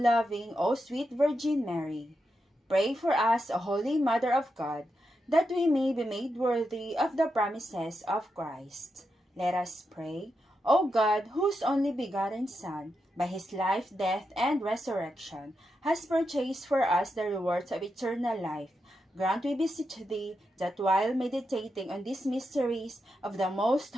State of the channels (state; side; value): normal; both; correlation 0.86